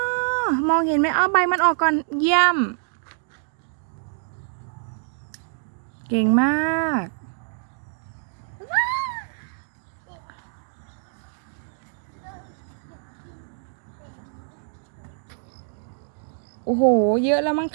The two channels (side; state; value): left; silent; digital silence